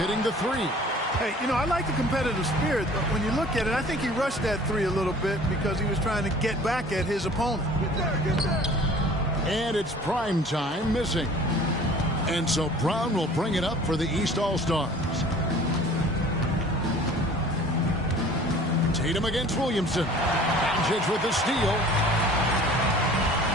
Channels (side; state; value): both; normal; correlation 0.48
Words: the three. Hey, you know, I like the competitive spirit, but when you look at it, I think he rushed that three a little bit because he was trying to get back at his opponent. And it's prime time missing. And so Brown will bring it up for the East All-Stars. Tatum against Williamson. Doncic with the steal.